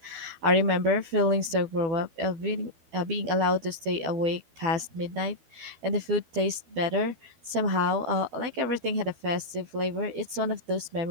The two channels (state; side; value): late; left; 12 ms